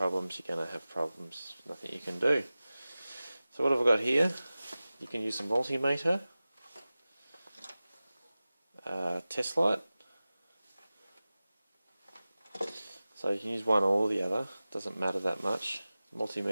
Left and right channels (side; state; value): both; inverted; correlation -0.97